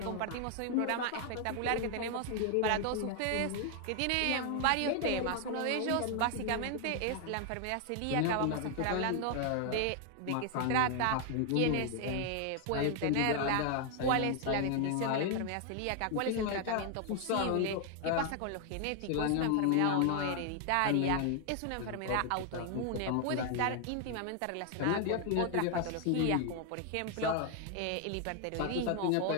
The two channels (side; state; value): both; different; correlation 0.00